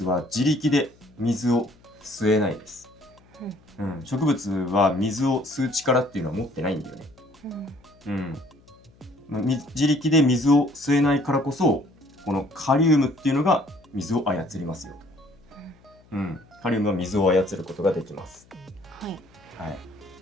は自力で水を吸えないです。植物は水を吸う力っていうのは持ってないんだよね。自力で水を吸えないからこそ、このカリウムっていうのが水を操りますよと。カリウムは水を操ることができます。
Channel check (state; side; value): noise; left; hum, 29 dB below the sound